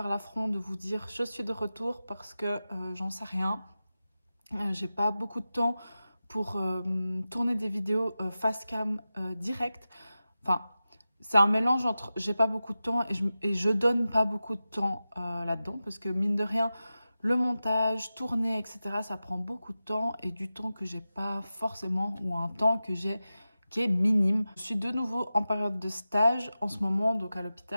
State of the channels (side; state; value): both; inverted; correlation -0.94